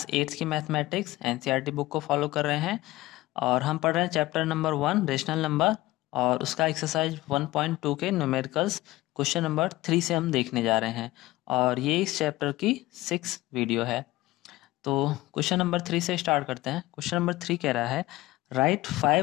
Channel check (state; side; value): quieter; right; 18.4 dB